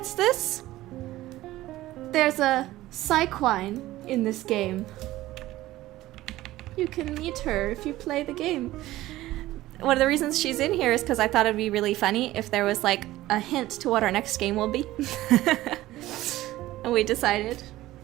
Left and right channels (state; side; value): quieter; left; 16.2 dB